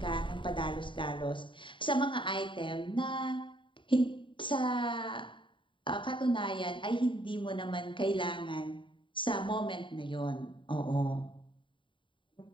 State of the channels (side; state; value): right; late; 0.24 ms